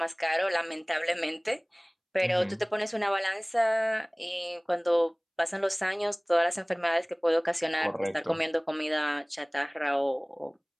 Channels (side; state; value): both; identical; correlation 1.00